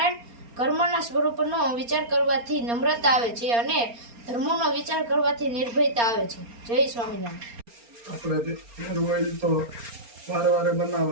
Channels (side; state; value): left; late; 4.3 ms